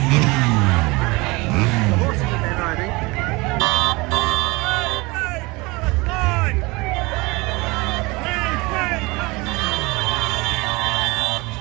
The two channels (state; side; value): quieter; left; 24.4 dB